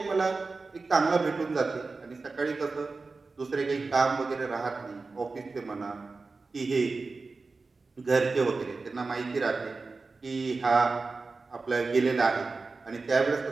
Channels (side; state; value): left; quieter; 4.0 dB